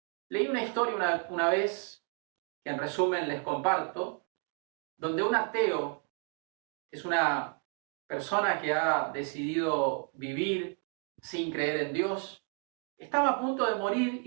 Leí una historia una vez, que en resumen les comparto, donde un ateo es una persona que ha decidido vivir sin creer en Dios. Estaba a punto de morir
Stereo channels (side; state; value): left; quieter; 38.4 dB